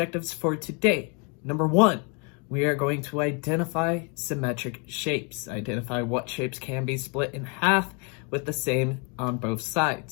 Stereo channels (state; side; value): quieter; right; 35.2 dB